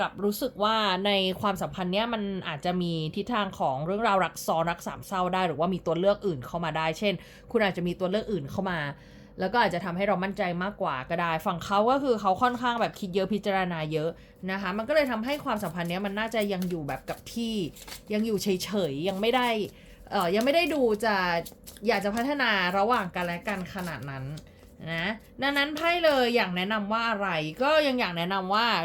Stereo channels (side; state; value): both; identical; correlation 1.00